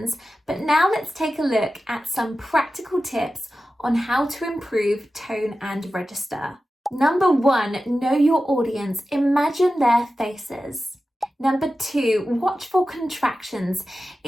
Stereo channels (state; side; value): normal; both; correlation 0.93